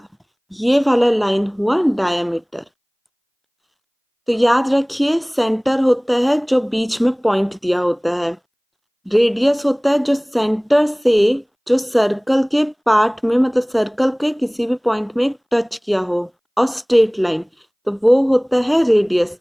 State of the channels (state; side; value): identical; both; correlation 1.00